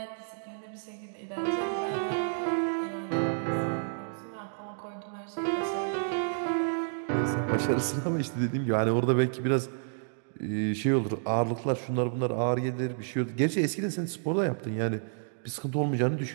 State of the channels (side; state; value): left; silent; digital silence